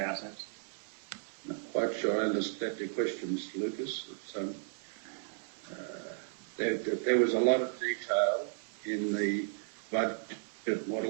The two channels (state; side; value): silent; left; digital silence